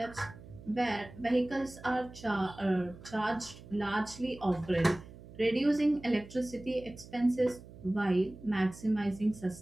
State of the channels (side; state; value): right; noise; hum, 17 dB below the sound